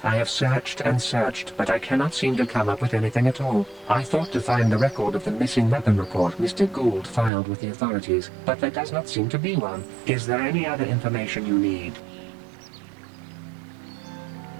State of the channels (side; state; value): left; drops out; at 7.3 s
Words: I have searched and searched, but I cannot seem to come up with anything at all. I thought to find the record of the missing weapon report Mr. Gould filed with the authorities, but there does not seem to be one. Is there any other information you need?